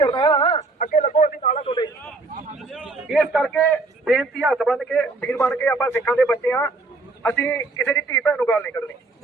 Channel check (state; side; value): quieter; left; 3.4 dB